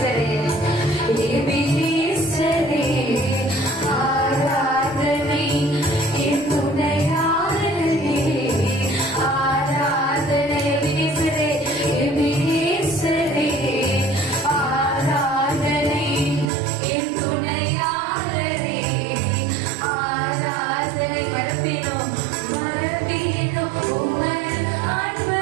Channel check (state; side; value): drops out; left; at 16.4 s